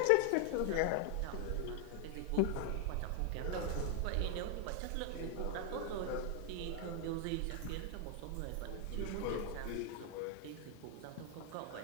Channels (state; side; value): different; both; correlation 0.00